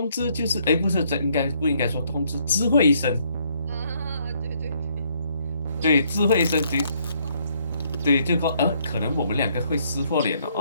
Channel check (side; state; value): both; inverted; correlation -0.69